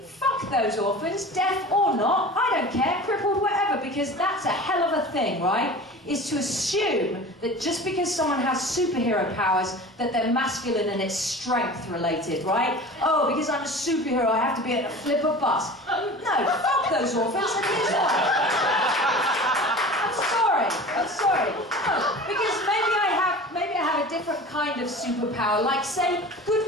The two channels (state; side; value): normal; both; correlation 0.37